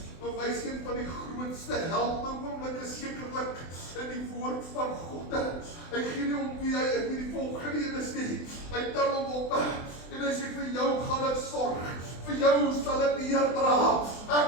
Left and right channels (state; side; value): late; right; 24 ms